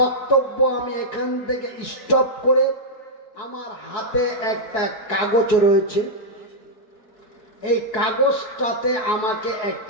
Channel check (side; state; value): right; late; 4.7 ms